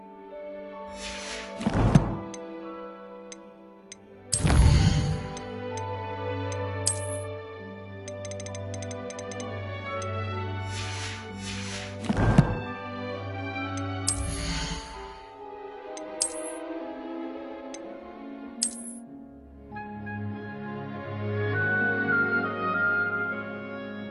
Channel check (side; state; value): both; identical; correlation 1.00